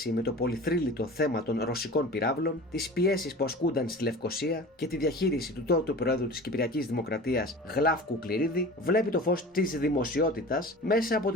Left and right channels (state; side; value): normal; both; correlation 0.38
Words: με το πολυθρύλιτο θέμα των ρωσικών πυράβλων, τις πιέσεις που ασκούνταν στη Λευκοσία και τη διαχείριση του τότε Προέδρου της Κυπριακής Δημοκρατίας Γλάφκου Κληρίδη, βλέπει το φως της δημοσιότητας μέσα από